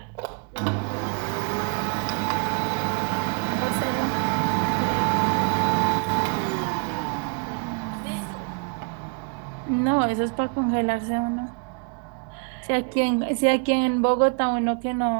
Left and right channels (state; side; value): quieter; left; 36.4 dB